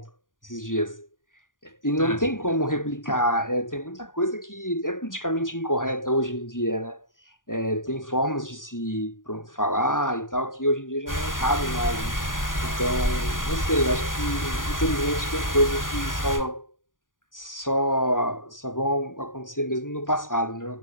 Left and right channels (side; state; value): right; late; 0.89 ms